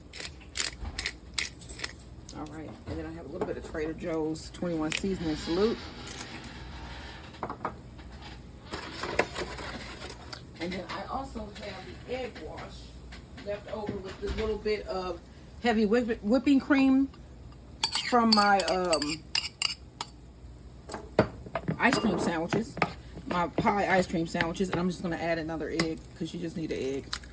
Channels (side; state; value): both; identical; correlation 1.00